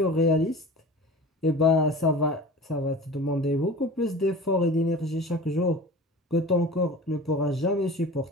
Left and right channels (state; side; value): normal; both; correlation 0.37